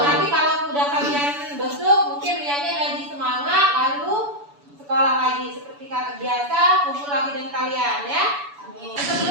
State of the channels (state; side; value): late; left; 7.0 ms